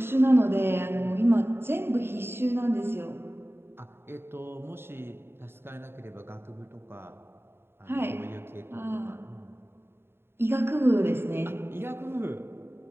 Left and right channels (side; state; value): left; late; 0.11 ms